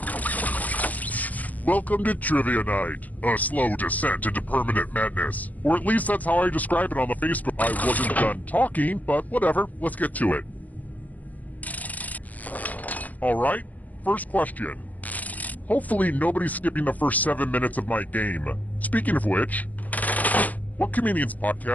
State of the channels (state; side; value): late; right; 0.078 ms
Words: Welcome to Trivia Night, a slow descent into permanent madness. Or at least that's how I describe it on the Facebook. I wasn't done talking, but whatever, let's get to it. Alright, first question. Hopefully nobody's skipping the first 7 minutes of my game. Speaking of which, what comedian's